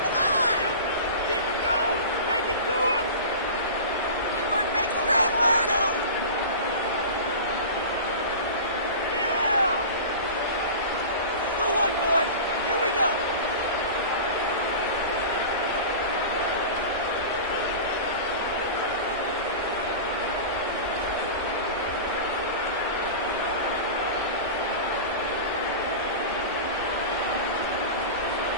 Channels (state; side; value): inverted; both; correlation -0.32